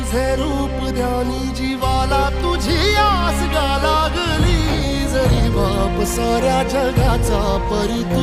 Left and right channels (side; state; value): both; identical; correlation 1.00